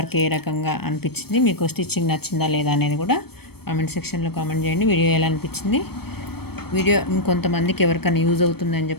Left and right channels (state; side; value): late; right; 0.96 ms